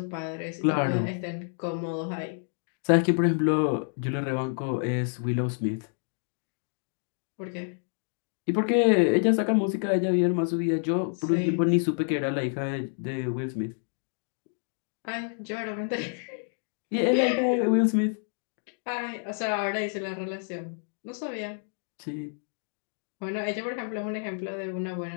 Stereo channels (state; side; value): silent; right; 59 dB below the other